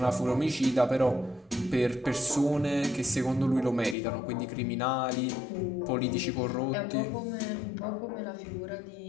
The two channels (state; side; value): drops out; right; at 4.0 s